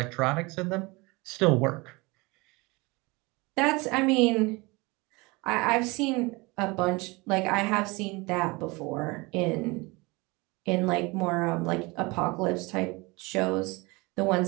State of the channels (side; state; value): left; quieter; 25.1 dB